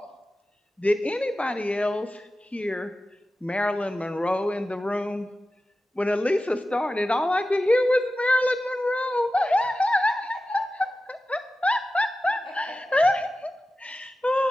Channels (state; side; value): normal; both; correlation 0.94